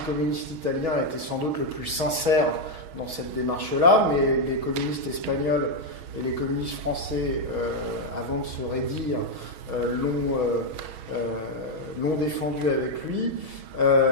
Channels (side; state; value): left; late; 6.3 ms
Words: communiste italien, était sans doute le plus sincère dans cette démarche-là, mais les communistes espagnols et les communistes français, avant de se raidir, l'ont défendu avec lui.